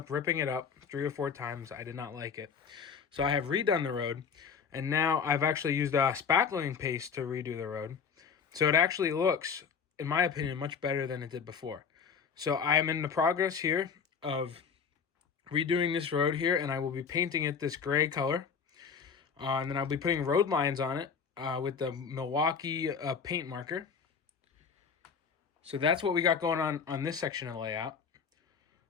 ripping it up 3 or 4 times. I did not like it. So I have redone the road, and now I've actually used a spackling paste to redo the road. So it actually looks, in my opinion, much better than it did before. So I am in the progress here of redoing this road here, and I will be painting it this gray color. And then I'll be putting road lines on it with the Milwaukee paint marker. So that's what we got going on this section of the layout.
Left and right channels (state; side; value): quieter; right; 6.2 dB